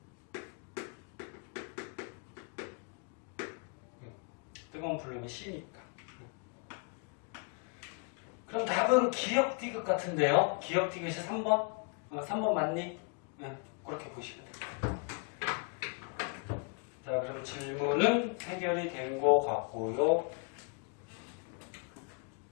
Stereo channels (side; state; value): right; quieter; 37.1 dB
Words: 뜨거운 플룸이 C니까. 그럼 답은 기억 디귿 같은데요? 기억 디귿이 3번? 3번 맞니? 그렇게 보시면 됩니다. 자, 그럼 질문은 해결이 된 것 같고요.